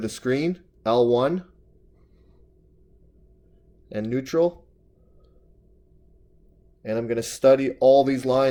the screen, L1, and neutral. And I'm going to study all these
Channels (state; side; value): identical; both; correlation 1.00